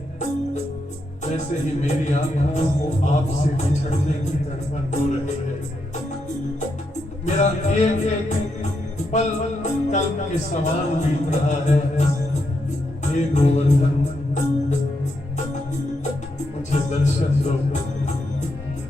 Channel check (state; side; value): normal; both; correlation 0.81